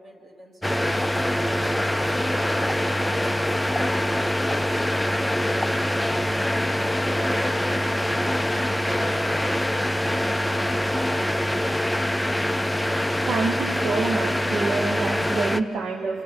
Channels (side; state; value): both; normal; correlation 0.96